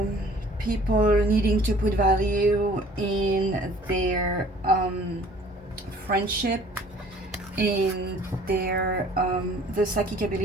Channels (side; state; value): both; normal; correlation 0.53